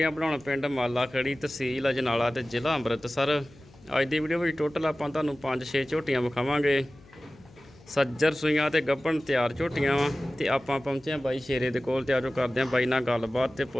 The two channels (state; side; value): noise; left; hum, 25 dB below the sound